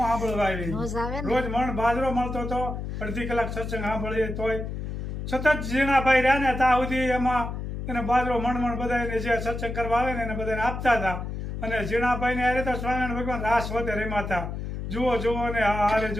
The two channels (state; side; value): noise; left; hum, 5 dB below the sound